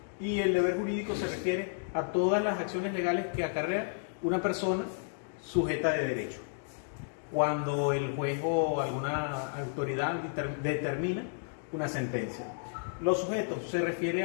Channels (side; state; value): right; silent; digital silence